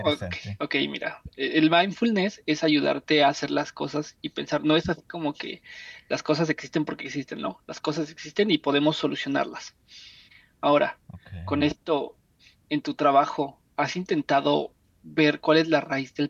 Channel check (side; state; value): both; identical; correlation 1.00